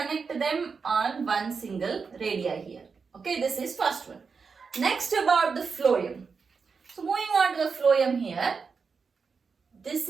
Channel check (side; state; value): left; quieter; 5.3 dB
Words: them on one single radii here. Okay, this is first one. Next about the phloem. So moving on to the phloem here. This